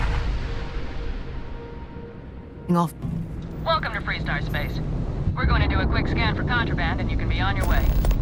Off. Welcome to Freestar Space. We're going to do a quick scan for contraband and you can be on your way.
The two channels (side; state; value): both; identical; correlation 1.00